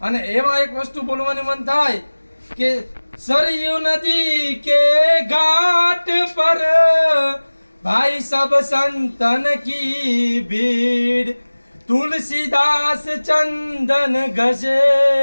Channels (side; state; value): both; inverted; correlation -1.00